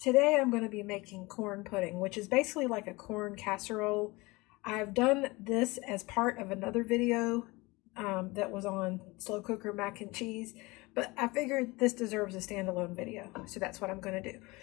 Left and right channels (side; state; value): right; quieter; 23.4 dB